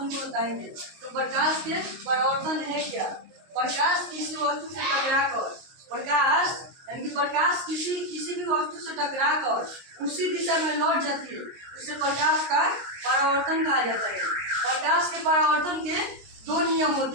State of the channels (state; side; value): late; left; 22 ms